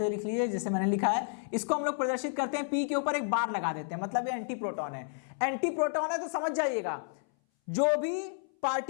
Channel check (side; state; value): right; silent; 57 dB below the other